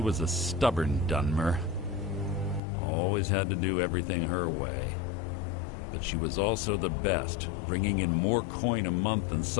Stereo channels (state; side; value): drops out; right; at 2.6 s